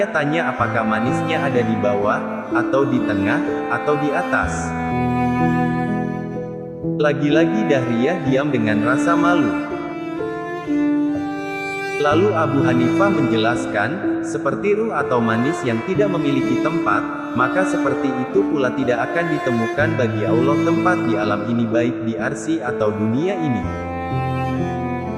tanya apakah manisnya ada di bawah, atau di tengah, atau di atas?" Lagi-lagi Dahriyah diam dengan rasa malu. Lalu Abu Hanifah menjelaskan, seperti ruh atau manis yang tidak memiliki tempat, maka seperti itu pula tidak akan ditemukan bagi Allah tempat di alam ini baik di arsy atau dunia ini.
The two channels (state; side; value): identical; both; correlation 1.00